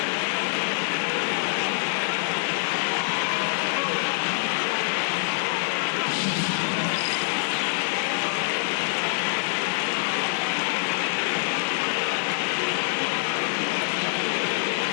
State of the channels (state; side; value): silent; right; 61 dB below the other